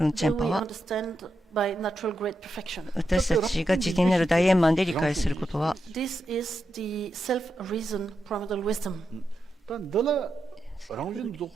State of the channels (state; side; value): normal; both; correlation 0.86